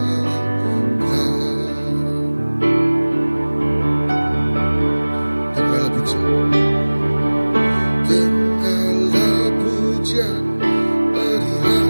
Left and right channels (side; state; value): both; inverted; correlation -1.00